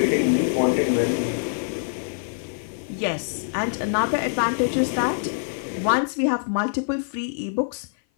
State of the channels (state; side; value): silent; right; 56 dB below the other